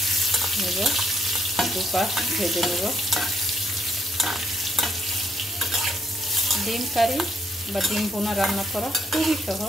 নেব, দুপাশ ভেজে নেব। ডিম কারি বা ডিম ভুনা রান্না করা খুবই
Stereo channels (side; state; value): both; normal; correlation 0.71